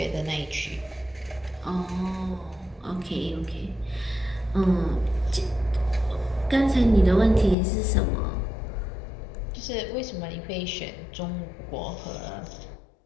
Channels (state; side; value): drops out; right; at 7.6 s